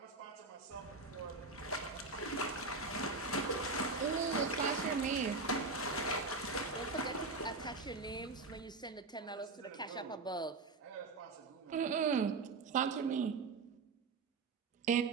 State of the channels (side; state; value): left; quieter; 3.9 dB